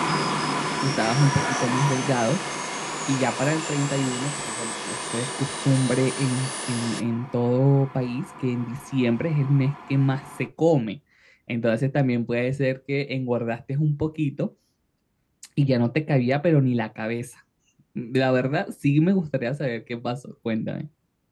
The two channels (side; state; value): both; identical; correlation 1.00